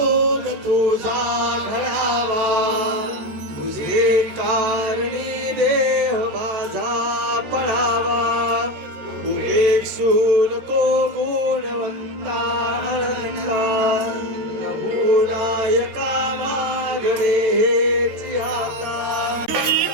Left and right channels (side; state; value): left; late; 13 ms